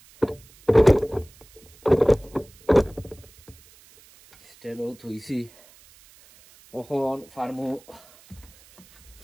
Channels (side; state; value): right; noise; hiss, 26 dB below the sound